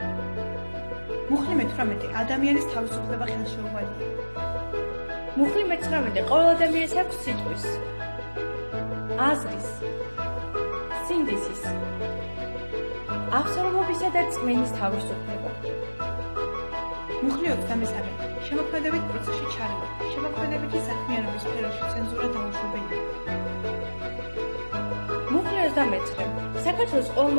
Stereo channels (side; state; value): both; inverted; correlation -1.00